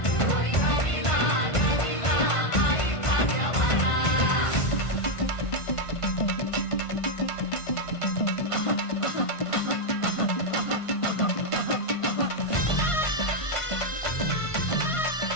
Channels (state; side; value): late; right; 1.5 ms